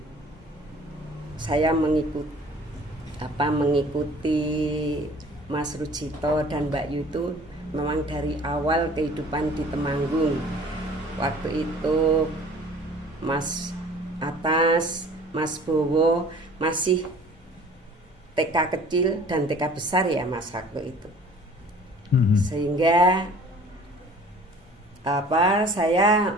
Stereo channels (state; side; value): normal; both; correlation 0.49